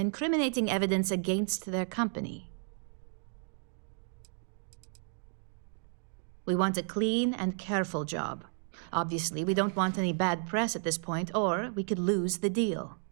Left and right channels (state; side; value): silent; left; 56 dB below the other